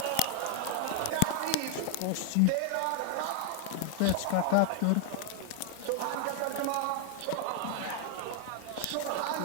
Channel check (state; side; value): different; both; correlation 0.00